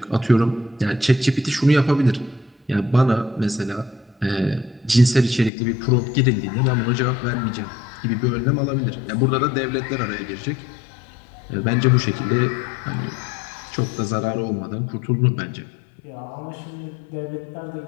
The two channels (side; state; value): right; drops out; at 5.5 s